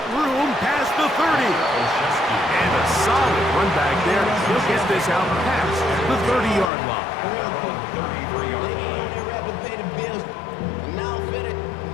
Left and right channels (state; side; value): drops out; right; at 6.7 s